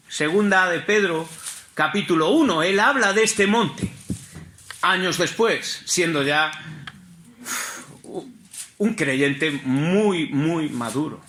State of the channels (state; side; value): identical; both; correlation 1.00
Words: 2 de Pedro, capítulo 1. Él habla de este monte, años después, siendo ya un creyente muy, muy maduro,